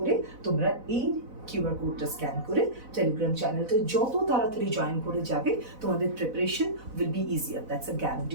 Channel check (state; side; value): late; left; 4.0 ms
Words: তোমরা এই QR কোডটা স্ক্যান করে টেলিগ্রাম চ্যানেলটা যত তাড়াতাড়ি জয়েন করে যাবে তোমাদের preparation will be easier. That's a